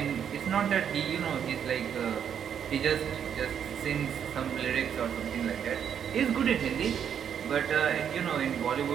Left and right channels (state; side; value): quieter; left; 8.4 dB